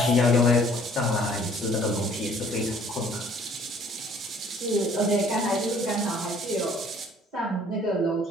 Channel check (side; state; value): both; normal; correlation 0.56